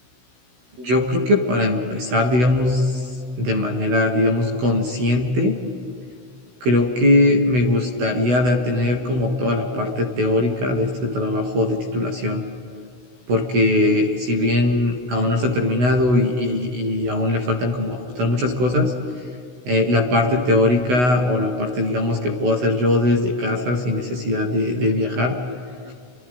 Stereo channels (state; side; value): late; left; 16 ms